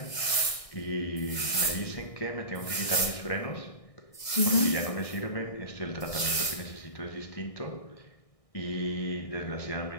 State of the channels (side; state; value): right; late; 1.6 ms